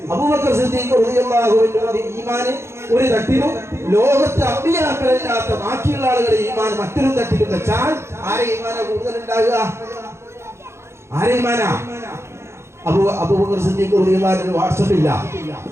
അബൂബക്കർ സിദ്ദീഖ് റളിയല്ലാഹു അൻഹുവിന്റെ ഈമാൻ ഒരു തട്ടിലും ലോകത്തെ അമ്പിയാക്കളല്ലാത്ത ബാക്കിയുള്ള ആളുകളുടെ ഈമാൻ മറ്റൊരു തട്ടിലും വെച്ചാൽ ആരെ ഈമാനാ കൂടുതൽ ഉണ്ടാകുക? ആരെ ഈമാനാ? അബൂബക്കർ സിദ്ദീഖ് റളിയല്ലാഹു അൻഹു വാട്സ്ആപ്പ് ഇല്ല,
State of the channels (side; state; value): left; late; 0.13 ms